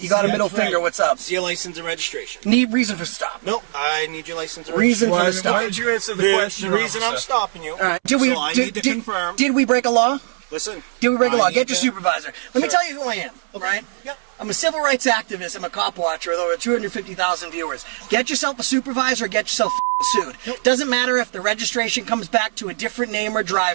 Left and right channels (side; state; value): left; silent; 65 dB below the other